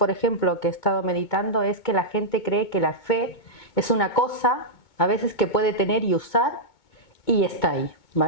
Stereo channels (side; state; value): right; late; 2.2 ms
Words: ejemplo, que he estado meditando, es que la gente cree que la fe es una cosa, a veces que puede tener y usar, y está ahí,